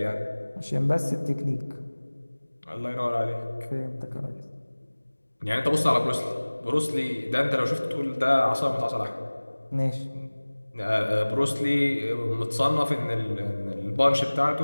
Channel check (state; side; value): inverted; both; correlation -1.00